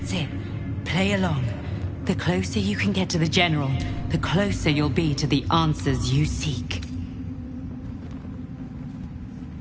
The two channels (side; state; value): both; identical; correlation 1.00